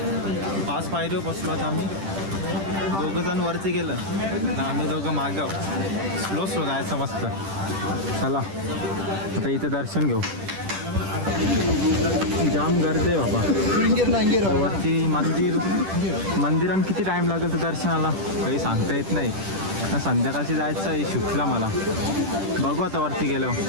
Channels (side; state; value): left; late; 10 ms